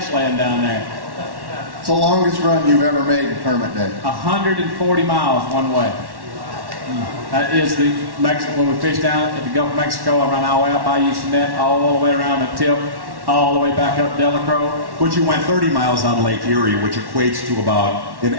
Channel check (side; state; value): left; late; 1.1 ms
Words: laying down there. It's the longest run you've ever made in tournament day. 140 miles one way. That is the Mexico. When we fished down at the Gulf of Mexico, I ran all the way out by Houston, all the way around the tip, all the way back up Delacroix. But you went 30 miles on Lake Erie, which equates to about an